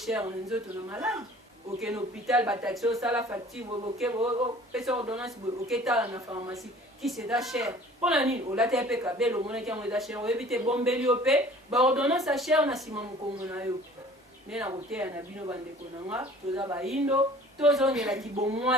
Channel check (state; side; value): normal; both; correlation 0.48